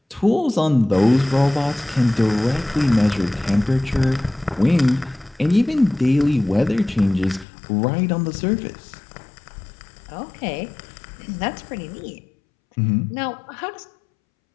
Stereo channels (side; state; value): right; drops out; at 7.5 s